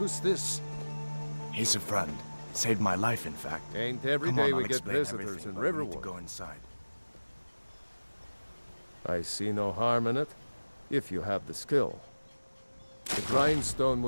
this? He's a friend. Saved my life, in fact. Ain't every Come day on, we I'll get explain visitors everything, in but we need Riverwood. to go inside. I see no harm in it, if you have the skill. The grindstone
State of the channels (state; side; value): inverted; both; correlation -1.00